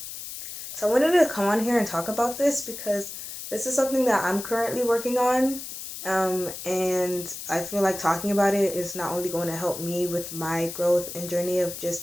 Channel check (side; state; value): left; noise; hiss, 9 dB below the sound